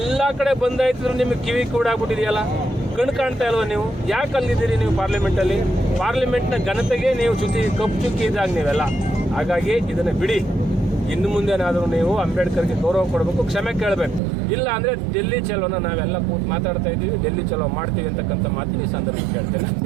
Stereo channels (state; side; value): drops out; left; at 14.2 s